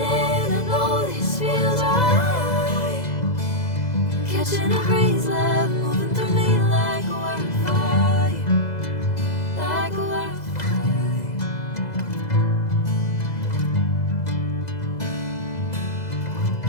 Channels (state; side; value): late; right; 2.0 ms